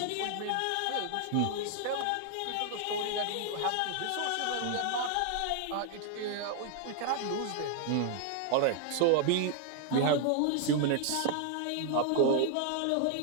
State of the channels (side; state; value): both; different; correlation 0.00